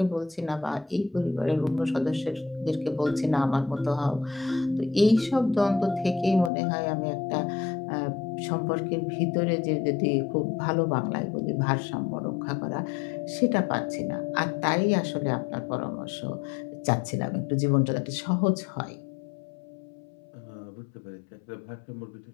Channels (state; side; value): drops out; right; at 6.5 s